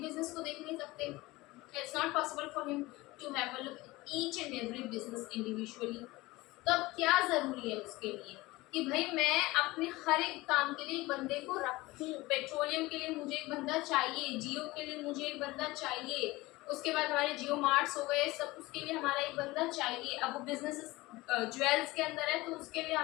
बिजनेस को देख नहीं सकते। It's not possible for him to have a look each and every business individually. तो अब क्या जरूरी है उसके लिए कि भाई मैं अपने हर एक काम के लिए एक बंदे को रखूं। पेट्रोलियम के लिए मुझे एक बंदा चाहिए, जियो के लिए मुझे एक बंदा चाहिए, उसके बाद हमारे जियो मार्ट्स हो गए सब, उसके लिए हमारा एक बंदा चाहिए। अब वो बिजनेस ज्वेल्स के अंदर है तो उसके लिए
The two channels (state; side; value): quieter; right; 20.4 dB